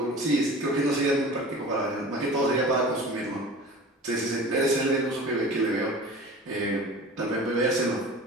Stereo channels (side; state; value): both; normal; correlation 0.38